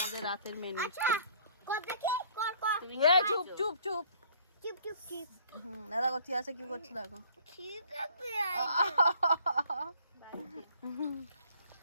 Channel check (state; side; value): inverted; both; correlation -0.56